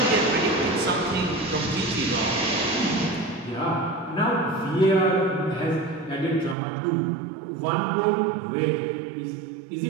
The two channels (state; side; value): drops out; left; at 6.6 s